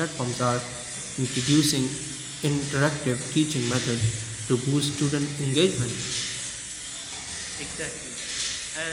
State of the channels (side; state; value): both; identical; correlation 1.00